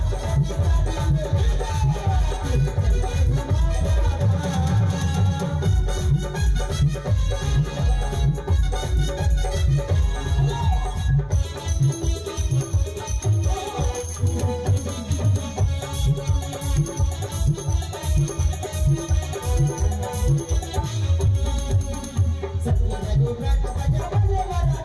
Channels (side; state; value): both; identical; correlation 1.00